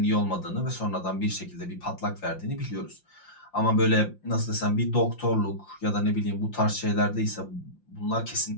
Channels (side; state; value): right; late; 5.7 ms